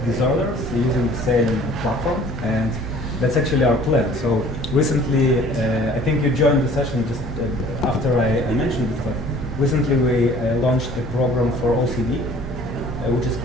disorders using the same platform, and that's actually our plan. So recently, I think you joined the session just after I mentioned it, but recently we launched a program for OCD, which is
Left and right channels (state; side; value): noise; right; hum, 11 dB below the sound